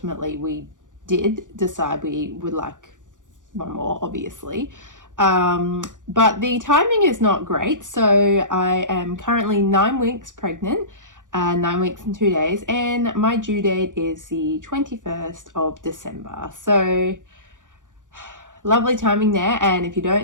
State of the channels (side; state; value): left; late; 0.87 ms